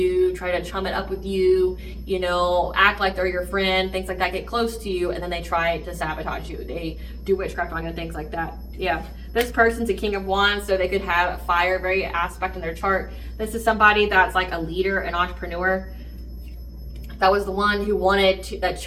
try to chum it up with you, you know, act like they're your friend, things like that, get close to you, and then they try to sabotage you. They do witchcraft on you and things like that. Yeah, this person's a King of Wands, so they could have fire, very aspect in their chart. This is somebody that's like a leader, an entrepreneur. That was the one who that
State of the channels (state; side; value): identical; both; correlation 1.00